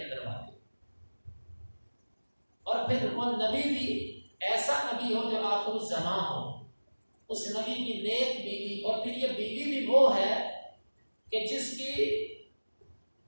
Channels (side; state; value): both; inverted; correlation -1.00